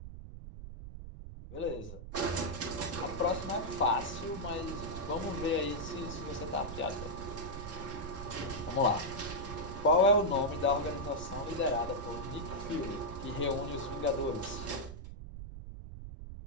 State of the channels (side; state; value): right; noise; rumble, 10 dB below the sound